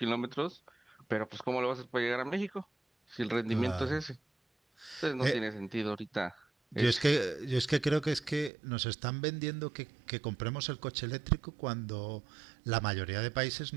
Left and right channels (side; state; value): left; drops out; at 8.5 s